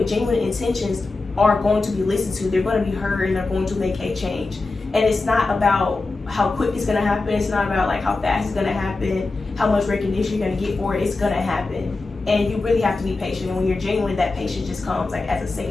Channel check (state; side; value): quieter; right; 3.5 dB